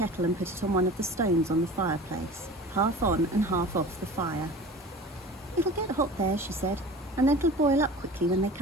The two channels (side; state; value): both; normal; correlation 0.38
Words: and put it on one of the stones on the fireplace, half on and half off the fire. It'll get hot there, she said, and then it'll boil up quickly when they